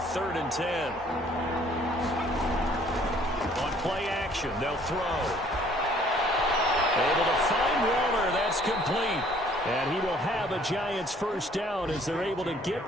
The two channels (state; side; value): normal; both; correlation 0.58